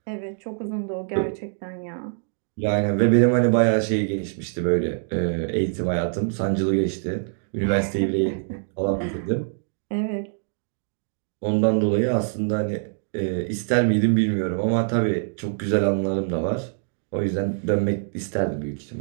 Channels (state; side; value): silent; left; digital silence